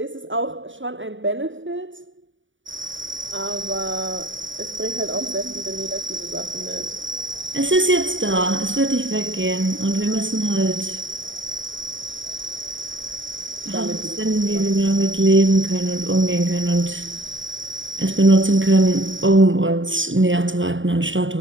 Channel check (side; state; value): left; late; 0.56 ms